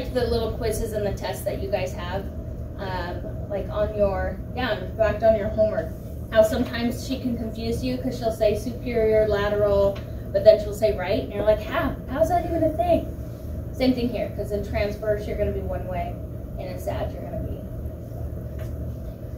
the little quizzes and the tests that you guys have, like on your, in fact, on your homework. How sometimes she can confuse you because she'll say superior, lateral, but then she'll say right, and you're like, how's that even a thing? Same thing here, because in transverse you're going to be one way, and in sag you're going to be.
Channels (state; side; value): identical; both; correlation 1.00